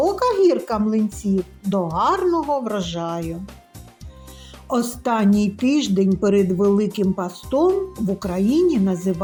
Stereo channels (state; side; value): identical; both; correlation 1.00